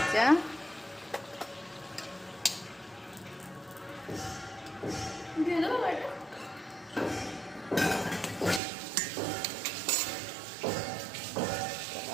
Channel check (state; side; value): drops out; left; at 8.6 s